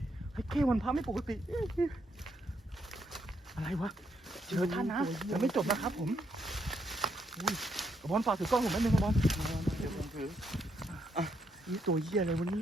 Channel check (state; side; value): normal; both; correlation 0.76